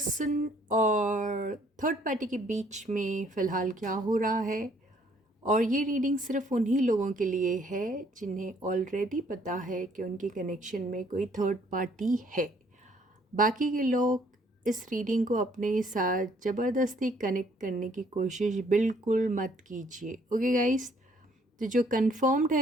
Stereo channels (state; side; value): normal; both; correlation 0.63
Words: और थर्ड पार्टी के बीच में फ़िलहाल क्या हो रहा है। और ये रीडिंग सिर्फ उन्हीं लोगों के लिए है जिन्हें ऑलरेडी पता है कि उनके कनेक्शन में कोई थर्ड पार्टी है। बाकी के लोग इस रीडिंग को अपने साथ ज़बरदस्ती कनेक्ट करने की कोशिश बिल्कुल मत कीजिए। ओके गाइस, तो जो कंफर्म्ड